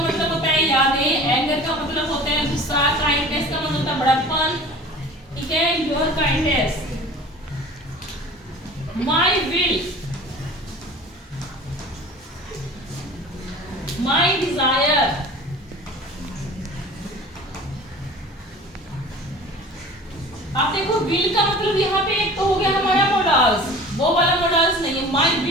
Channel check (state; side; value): normal; both; correlation 0.41